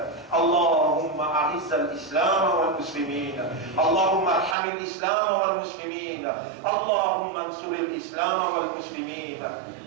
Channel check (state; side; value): drops out; left; at 4.5 s